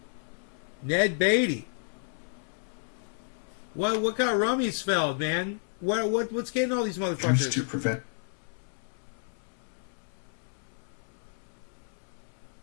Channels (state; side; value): silent; right; 57 dB below the other